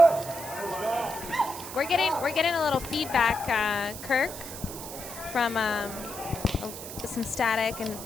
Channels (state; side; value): noise; right; hiss, 10 dB below the sound